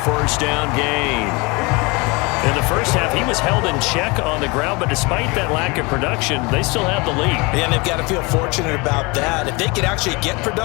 down gain. In the first half, he was held in check on the ground, but despite that lack of production, they still have the lead. And they've got to feel fortunate about that. If they could actually get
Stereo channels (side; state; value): right; quieter; 26.8 dB